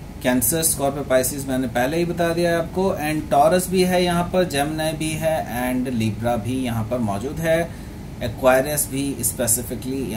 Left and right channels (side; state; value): both; identical; correlation 1.00